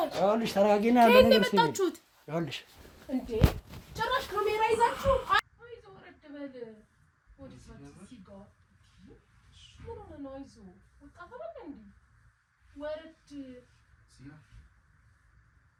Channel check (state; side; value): identical; both; correlation 1.00